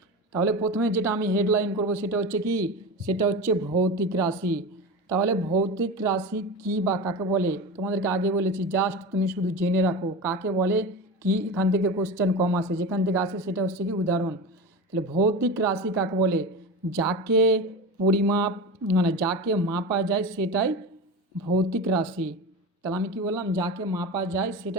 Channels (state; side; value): normal; both; correlation 0.26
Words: তাহলে প্রথমে যেটা আমি হেডলাইন করব সেটা হচ্ছে কি, সেটা হচ্ছে ভৌতিক রাশি। তাহলে ভৌতিক রাশি কি বা কাকে বলে তোমাদেরকে আগে বলেছি, জাস্ট তুমি শুধু জেনে রাখো কাকে বলে কি। এখান থেকে কোশ্চেন কম আসে, যেখান থেকে আসে সেটা হচ্ছে কি উদাহরণ। তাহলে ভৌতিক রাশি কাকে বলে? যাকে পরিমাপ মানে যাকে মাপা যায় সেটাই ভৌতিক রাশি। তাহলে আমি কি বললাম? যাকে মাপা যায়